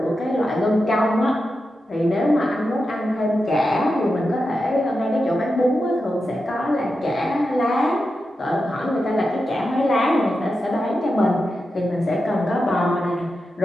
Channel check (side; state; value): both; normal; correlation 0.89